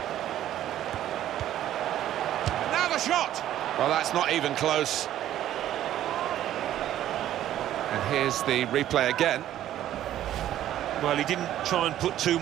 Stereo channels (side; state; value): left; quieter; 12.3 dB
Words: Now the shot! Well, that's not even close. And here's the replay again. Well, he didn't try and put too